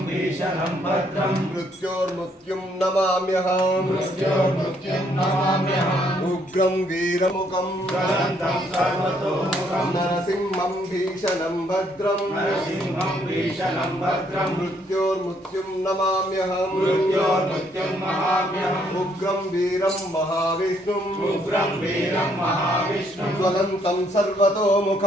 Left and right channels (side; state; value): both; normal; correlation 0.69